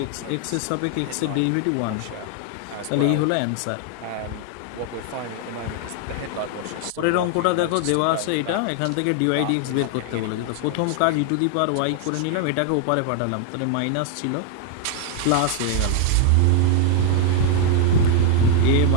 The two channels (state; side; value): different; both; correlation 0.00